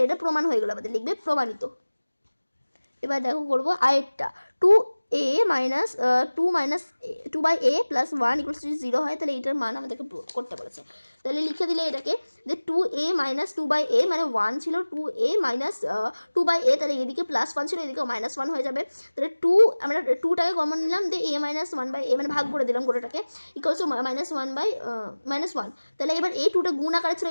এটা প্রমাণ হয়ে গেল আমাদের, লিখবে প্রমাণিত। এবার দেখো করবো আরেকটা 2a minus 2/a + 1 = 0 হয়, তাহলে এইটার মান আমাদেরকে করতে বলেছে। তাহলে লিখে দিলে এটাকে যে 2a - 2/a মানে 1 ছিল, 2a - 2/a, তাহলে এদিকে +1 ছিল, এদিকে -1 হয়ে যাবে। তাহলে 2 আমরা 2টাকে কমন নিলাম, দিয়ে a - 1/a মানে ভাগ করে দিলাম গোটাটাকে, = -1/-1। তাহলে এবার এই 2টা গুণ আকারে ছিল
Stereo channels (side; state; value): both; inverted; correlation -1.00